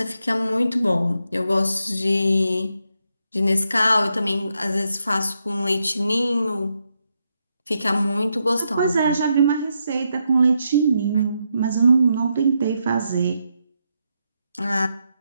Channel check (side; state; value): both; inverted; correlation -0.82